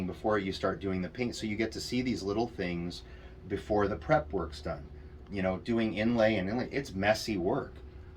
before you start doing the paint. So you get to see these little things before the prep work's done. Doing inlay, it's messy work.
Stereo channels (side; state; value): both; identical; correlation 1.00